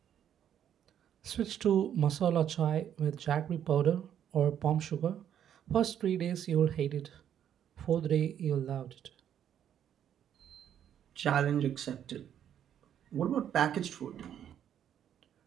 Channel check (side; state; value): left; quieter; 9.7 dB